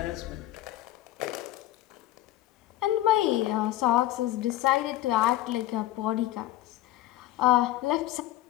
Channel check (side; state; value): right; quieter; 14.6 dB